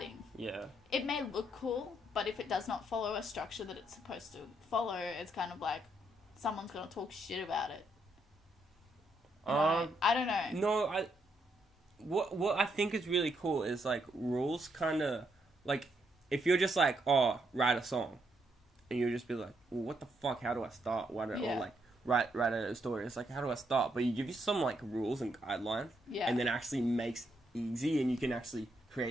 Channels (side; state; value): both; normal; correlation 0.76